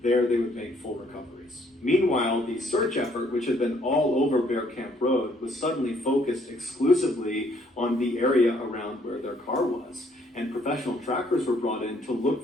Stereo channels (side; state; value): both; normal; correlation 0.66